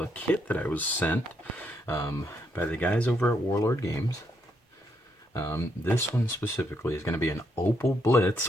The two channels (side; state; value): both; normal; correlation 0.76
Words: kit that I was sent by the guys over at Warlord Games. This one specifically is going to be an Opel Blitz,